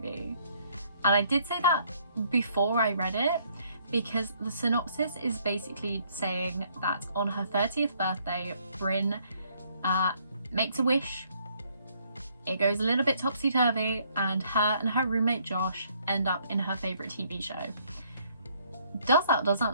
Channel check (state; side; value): inverted; both; correlation -0.66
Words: And I did say that before I read it, because the synopsis is basically saying that on her 30th birthday, Bryn makes a wish. It goes a little bit topsy-turvy, and her roommate Josh end up in her favourite TV show. Does that